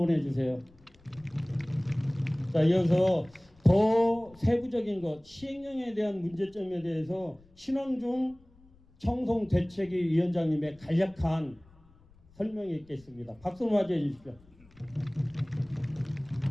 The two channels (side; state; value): left; noise; rumble, 28 dB below the sound